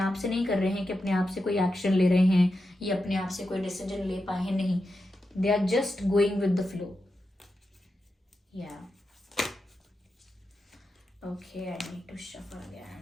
से नहीं कर रहे हैं कि अपने आप से कोई एक्शन ले रहे हैं या अपने आप से कोई डिसीजन ले पाए हैं, नहीं। They are just going with the flow. या okay, I need to shuffle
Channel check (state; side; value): normal; both; correlation 0.89